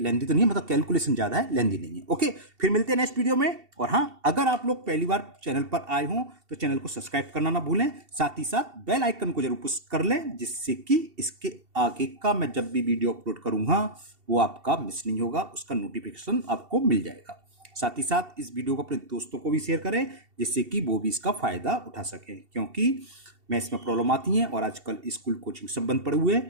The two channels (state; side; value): late; left; 2.7 ms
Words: तो नहीं है, मतलब कैलकुलेशन ज्यादा है, लेंदी नहीं है, ओके। फिर मिलते हैं नेक्स्ट वीडियो में। और हाँ, अगर आप लोग पहली बार चैनल पर आए हों तो चैनल को सब्सक्राइब करना ना भूलें, साथ ही साथ बेल आइकन को जरूर पुश कर लें, जिससे कि इसके आगे का मैं जब भी वीडियो अपलोड करूंगा वो आपका मिस नहीं होगा, उसका नोटिफिकेशन आपको मिल जाएगा। साथ ही साथ इस वीडियो को अपने दोस्तों को भी शेयर करें, जिससे कि वो भी इसका फायदा उठा सकें, क्योंकि मैथ्स में प्रॉब्लम आती हैं और आजकल स्कूल कोचिंग सब बंद पड़े हुए